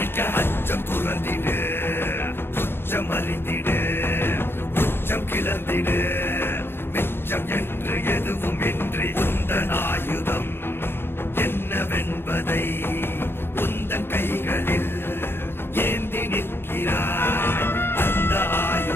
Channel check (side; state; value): right; late; 0.11 ms